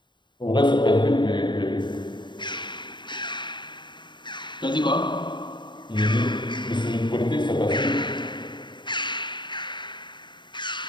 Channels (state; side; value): late; right; 0.22 ms